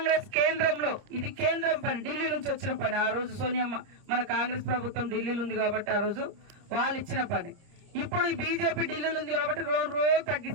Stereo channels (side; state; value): left; late; 30 ms